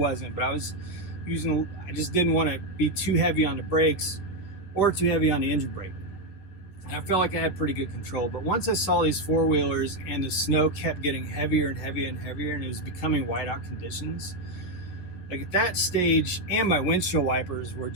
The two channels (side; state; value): right; late; 11 ms